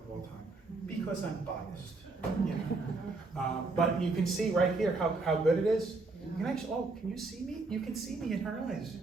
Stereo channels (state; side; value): quieter; left; 3.6 dB